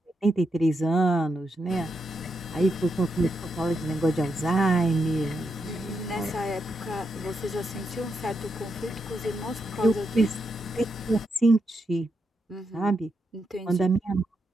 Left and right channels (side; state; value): both; normal; correlation 0.83